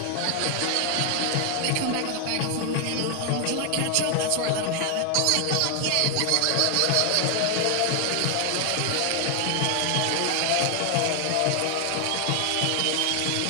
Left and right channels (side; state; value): both; different; correlation 0.00